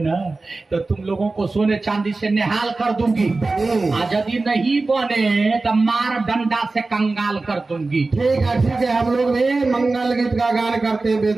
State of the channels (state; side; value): quieter; left; 3.5 dB